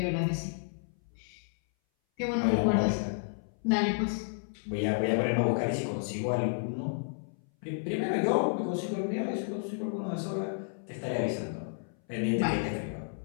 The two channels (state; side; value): silent; right; 57 dB below the other